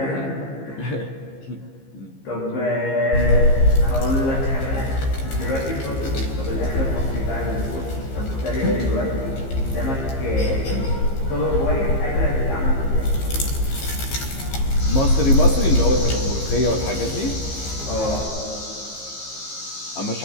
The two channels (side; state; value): right; late; 15 ms